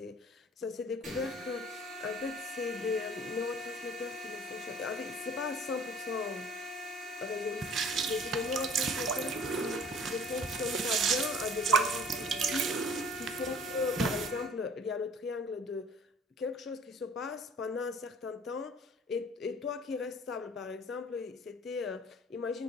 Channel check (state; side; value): normal; both; correlation 0.50